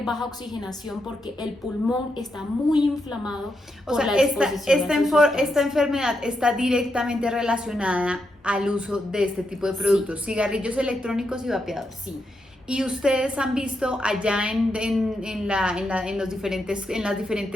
baja oxigenación porque el pulmón está muy inflamado por la exposición. Esta enfermedad está directamente relacionada al uso de este tipo de productos, sí. Cigarrillos electrónicos y vapeadores. Sí. ¿Y ustedes han visto allá en las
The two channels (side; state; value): both; normal; correlation 0.83